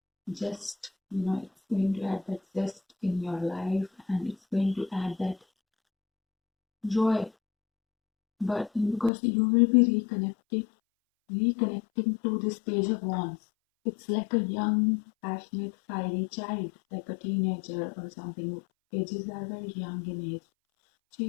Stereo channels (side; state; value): right; drops out; at 9.1 s